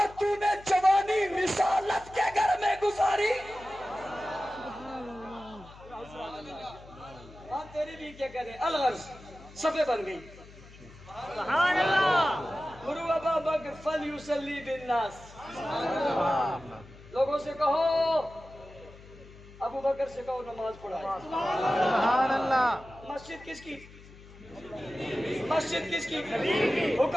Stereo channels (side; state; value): left; noise; hum, 20 dB below the sound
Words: تو نے جوانی رسالت کے گھر میں گزاری. ہاں تیری بھی کیا کہنے, الغرض صفحے بن گئی. سبحان اللہ. مروا ابا بکر فلیصلی بالناس, لوگوں سے کہو ابو بکر سے کہو نماز پڑھائے. سبحان اللہ. مسجد کس کی, مسجد کس کی,